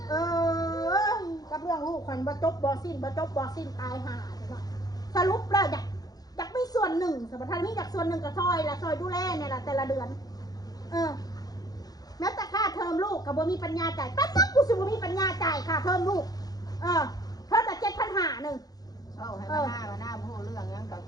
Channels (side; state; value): right; late; 0.19 ms